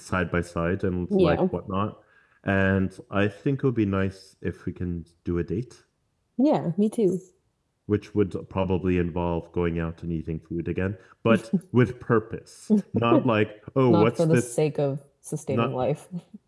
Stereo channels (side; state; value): both; identical; correlation 1.00